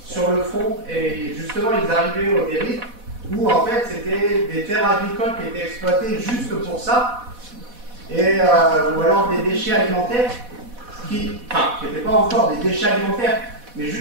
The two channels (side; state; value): left; late; 4.1 ms